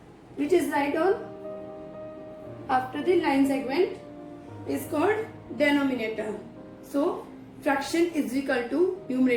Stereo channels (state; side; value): identical; both; correlation 1.00